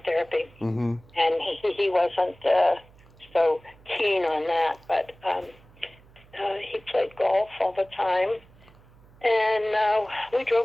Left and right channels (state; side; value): noise; right; hum, 26 dB below the sound